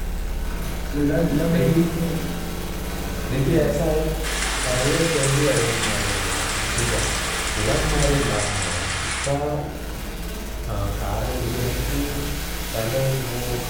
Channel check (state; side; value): identical; both; correlation 1.00